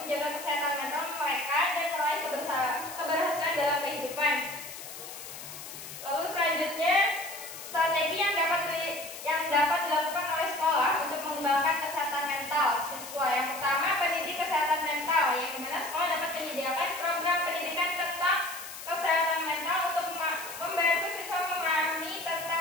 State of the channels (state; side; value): noise; left; hiss, 12 dB below the sound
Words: kesehatan mental mereka dan meraih keberhasilan dalam kehidupan. Lalu selanjutnya, strategi yang dapat dilakukan oleh sekolah untuk mengembangkan kesehatan mental siswa. Yang pertama, pendidik kesehatan mental, yang dimana sekolah dapat menyediakan program pendidikan tentang kesehatan mental untuk membantu siswa memahami tentang